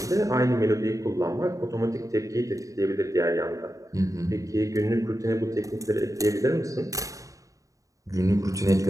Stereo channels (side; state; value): left; late; 0.16 ms